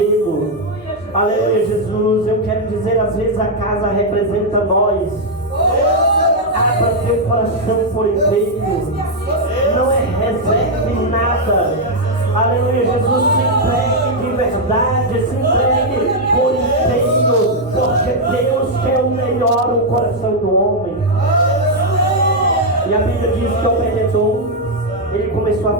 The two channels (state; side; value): normal; both; correlation -0.01